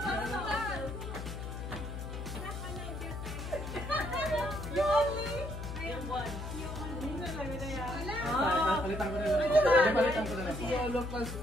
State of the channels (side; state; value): left; noise; hum, 7 dB below the sound